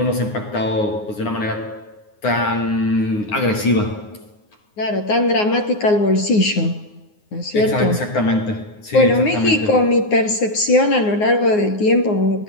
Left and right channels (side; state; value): right; late; 9.6 ms